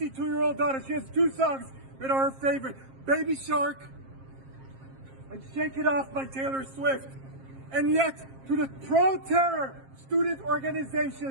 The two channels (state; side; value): late; left; 7.5 ms